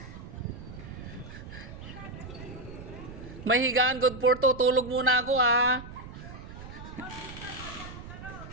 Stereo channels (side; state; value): right; noise; rumble, 13 dB below the sound